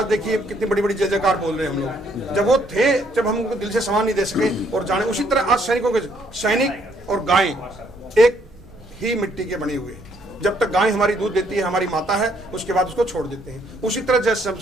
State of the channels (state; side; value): noise; right; rumble, 24 dB below the sound